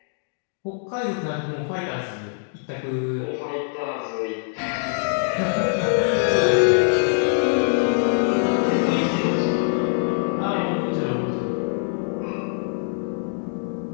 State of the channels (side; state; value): right; silent; digital silence